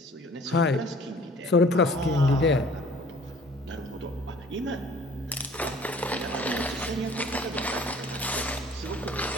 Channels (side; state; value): both; normal; correlation 0.52